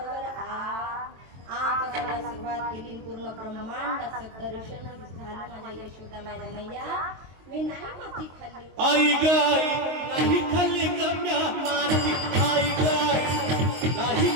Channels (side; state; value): left; late; 23 ms